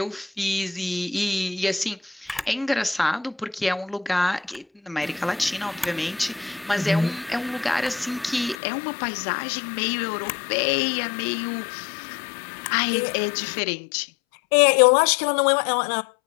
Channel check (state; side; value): drops out; right; at 8.6 s